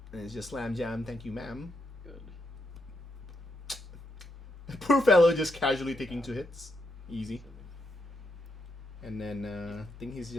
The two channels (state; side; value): normal; both; correlation 0.81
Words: and it's just slam jam. Thank you, ma'am. Good. Poor fellow just casually taking 2 hits, easy. And then I think he's